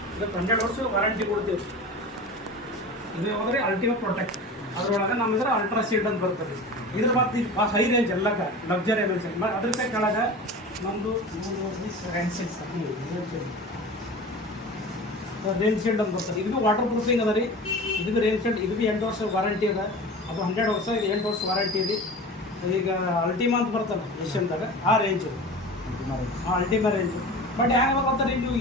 ಇದಕ್ಕೆ 100 ವರ್ಷ ವಾರಂಟಿ ಕೊಡ್ತೀವಿ. ಇದು ಹೋದರೆ ಅಲ್ಟಿಮೇಟ್ ಪ್ರೊಟೆಕ್ಟ್. ಅದರೊಳಗೆ ನಮ್ಮಿದ್ರೆ ಅಲ್ಟ್ರಾ ಶೀಟ್ ಅಂತ ಬರ್ತದೆ. ಇದ್ರ ಮತ್ತೆ ಹೈ ರೇಂಜ್ ಎಲ್ಲಕ್ಕ ಲಕ್ಸರಿ ಮೆನ್ಸನ್ ಅದ್ರ ಕೆಳಗೆ ನಮ್ಮದು ರೇಂಜ್ ಶೀಲ್ಡ್ ಅಂತ ಬರ್ತದೆ. ಇದು ವಾಟರ್ ಪ್ರೂಫಿಂಗ್ ಅದ ರೀ. ಇದು ರೇಂಜ್ ಶೀಲ್ಡ್, ಇದು ಭೀ 8 ವರ್ಷ ವಾರಂಟಿ ಅದ. ಅದು 100 ವರ್ಷ, ಇದು 8 ವರ್ಷ ವಾರಂಟಿ ಇದೆ. ಈಗ ಅಲ್ಟಿಮಾ ಅಂತ ಬರ್ತಲ್ಲ ಏಷ್ಯನ್ದಾಗ, ಆ ರೇಂಜು, ಅಲ್ಟಿಮಾ ರೇಂಜು. ಬಟ್ ಹೆಂಗೆ ಗೊತ್ತಾರೆ ನೀವು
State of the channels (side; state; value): both; normal; correlation 0.34